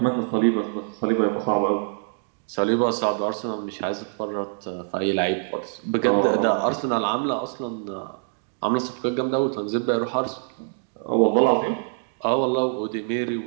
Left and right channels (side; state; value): left; silent; digital silence